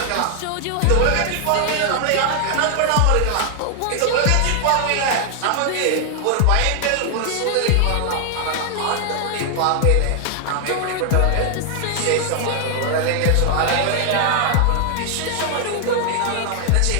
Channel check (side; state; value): both; different; correlation 0.00